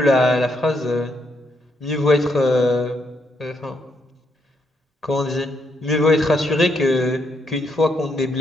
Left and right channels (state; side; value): normal; both; correlation 0.76